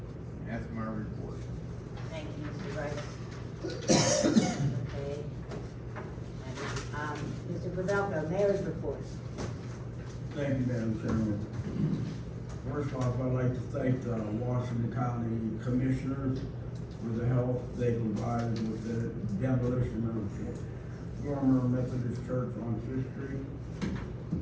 That's my report. Thank you, Mr. Brice. Okay. Mr. Pavelko, mayor's report. Thank you, Madam Chairman. First off, I'd like to thank the Washington County Commissioners for the help they provided with the demolition of former Methodist Church on Fifth Street.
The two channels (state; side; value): identical; both; correlation 1.00